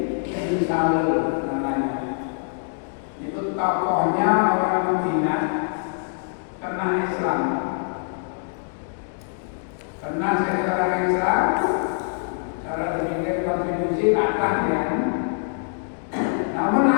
bin Salul namanya. Itu tokohnya orang Madinah, kena Islam. Karena jadi orang Islam, cara berpikir kontribusi akan ya. Namun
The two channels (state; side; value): silent; right; digital silence